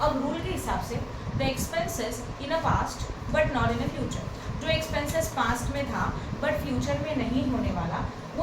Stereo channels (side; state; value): both; identical; correlation 1.00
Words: अब रूल के हिसाब से the expenses in a past but not in a future, जो एक्सपेंसेस पास्ट में था बट फ्यूचर में नहीं होने वाला,